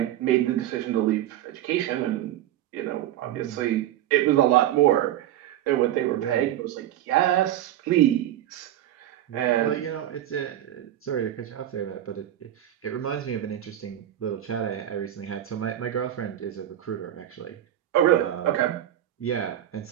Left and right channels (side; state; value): left; quieter; 12.3 dB